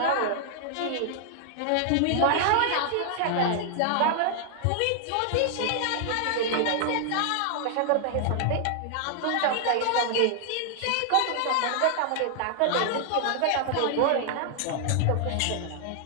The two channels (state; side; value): different; both; correlation 0.00